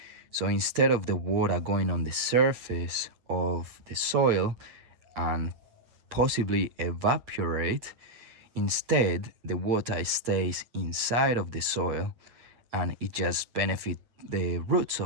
So instead of the water going on the surface of the soil and possibly evaporate, instead the water stays inside of the soil, and it just benefits the roots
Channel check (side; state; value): left; late; 8.5 ms